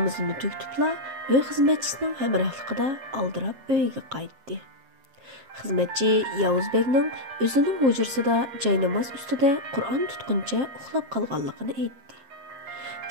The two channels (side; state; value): left; late; 7.6 ms